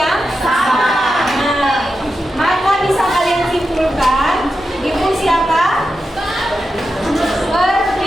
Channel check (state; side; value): normal; both; correlation 0.89